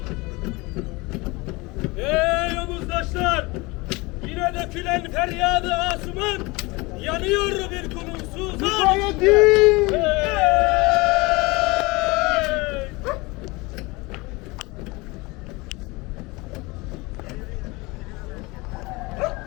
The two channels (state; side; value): quieter; right; 24.2 dB